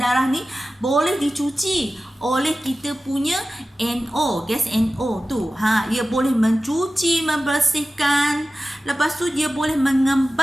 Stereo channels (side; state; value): both; normal; correlation 0.95